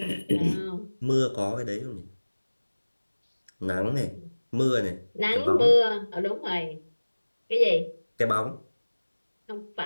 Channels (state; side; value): inverted; both; correlation -1.00